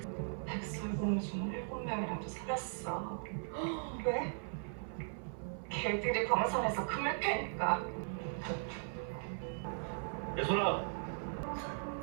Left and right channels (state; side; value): silent; left; 52 dB below the other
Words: 백설공주 7명이랑도 살았어. 왜? 걔들이 광산에서 금을 캐니까. 예솔아.